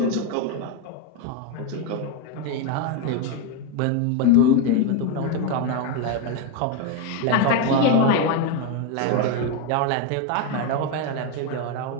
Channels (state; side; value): different; both; correlation 0.02